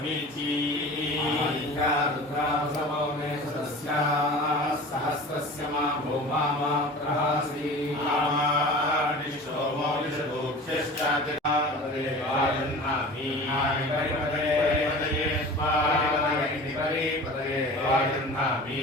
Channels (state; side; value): normal; both; correlation 0.38